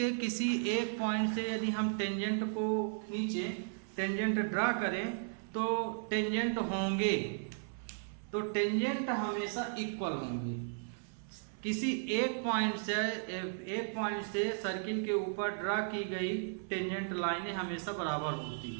किसी एक पॉइंट से यदि हम टेंजेंट को खींचे, टेंजेंट ड्रा करें तो टेंजेंट होंगे, तो टेंजेंट हमेशा इक्वल होंगे। किसी एक पॉइंट से सर्किल के ऊपर ड्रा की गई टेंजेंट लाइनें हमेशा बराबर होती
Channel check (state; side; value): silent; left; 54 dB below the other